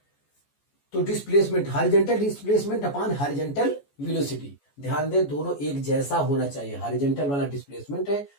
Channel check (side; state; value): right; late; 14 ms